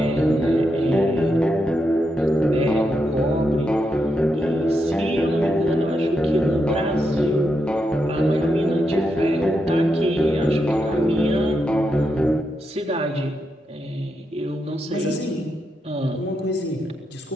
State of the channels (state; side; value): normal; both; correlation 0.84